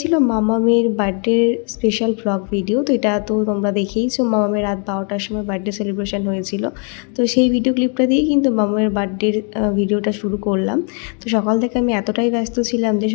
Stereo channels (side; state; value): right; quieter; 39.3 dB